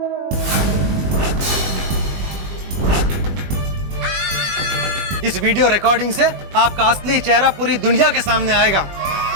इस वीडियो रिकॉर्डिंग से आपका असली चेहरा पूरी दुनिया के सामने आएगा।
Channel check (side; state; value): left; late; 21 ms